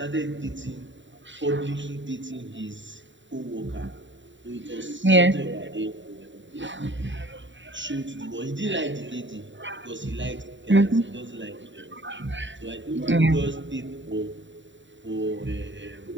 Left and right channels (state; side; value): late; left; 0.54 ms